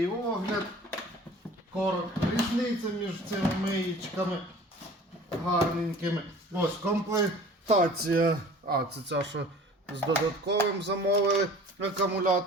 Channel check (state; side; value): normal; both; correlation 0.46